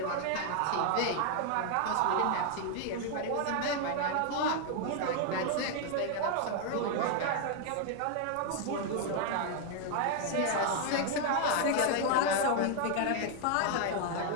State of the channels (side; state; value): both; different; correlation 0.00